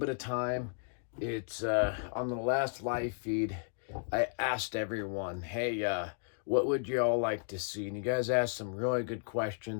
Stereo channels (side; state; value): right; silent; digital silence